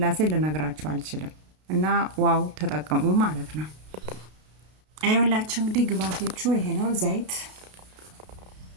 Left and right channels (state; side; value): late; left; 32 ms